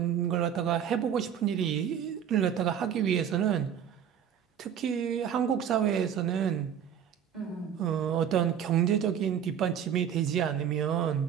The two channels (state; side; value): quieter; left; 8.8 dB